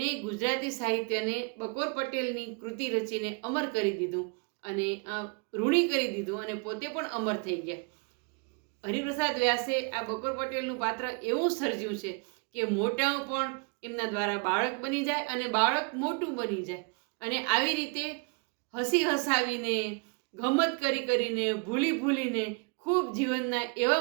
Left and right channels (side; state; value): left; quieter; 35.5 dB